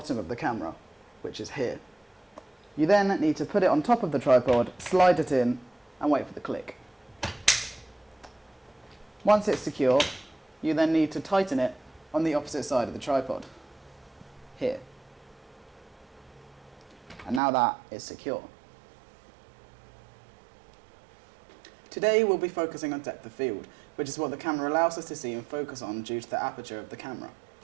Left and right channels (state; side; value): drops out; left; at 17.4 s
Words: of the camera, which is here. You then need to put it on top of the tripod, slide it in, and wait for the click. Once it's secure, you then need to tighten it on the opposite side of the tripod, here. And now that is secure. Today we'll be focusing on depth of field, which is what the camera allows us to see and focus on due to the aperture of the camera.